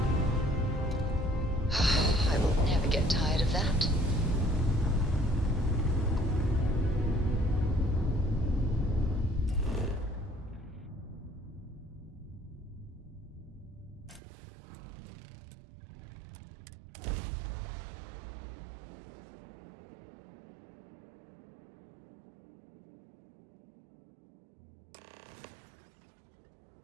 I will never get tired of that.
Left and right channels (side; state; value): left; drops out; at 14.2 s